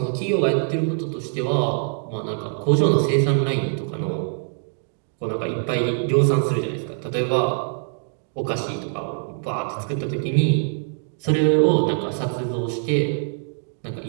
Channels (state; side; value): silent; left; digital silence